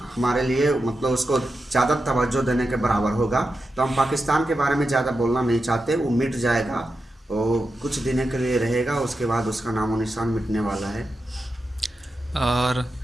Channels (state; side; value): normal; both; correlation 0.89